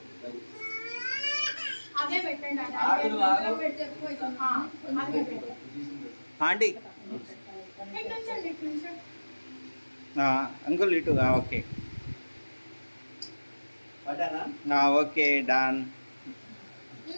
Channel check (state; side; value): inverted; both; correlation -1.00